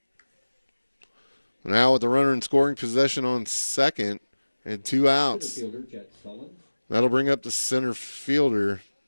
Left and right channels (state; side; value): inverted; both; correlation -1.00